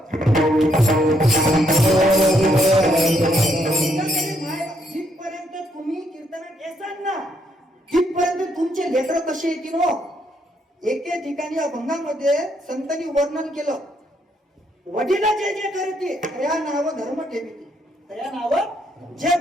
जिथपर्यंत तुम्ही कीर्तनात येसाल ना तिथपर्यंत तुमचे लेकर कसे येतील हो. एके ठिकाणी अभंगामध्ये संतांनी वर्णन केलं, वडील जे जे करते त्या नाव धर्म ठेवते. त्या नाव जे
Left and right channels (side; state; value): both; normal; correlation 0.74